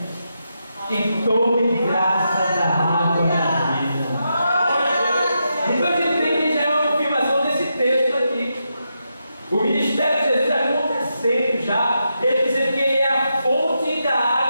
e tome de graça da água da vida. Então a gente tem que já uma confirmação desse texto aqui. O ministério de Jesus está acontecendo já.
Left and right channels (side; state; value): both; inverted; correlation -0.85